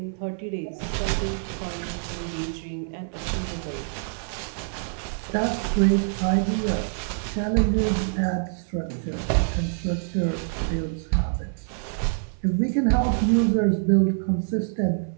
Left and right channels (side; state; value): left; silent; 61 dB below the other